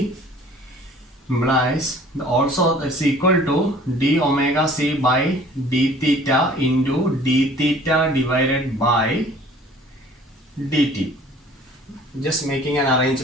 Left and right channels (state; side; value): normal; both; correlation 0.52